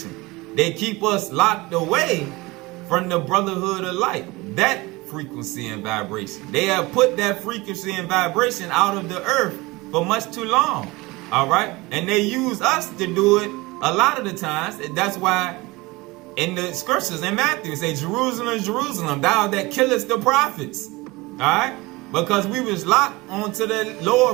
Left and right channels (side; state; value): left; quieter; 22.4 dB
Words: They keep us locked away from the brotherhood of light, that frequency and vibration. They have put that frequency and vibration out of the earth for much too long. All right, and they use us to do it a lot of the times. That's why in the scriptures in Matthew it say, Jerusalem, Jerusalem, thou that killest the prophets. All right, because we was locked onto the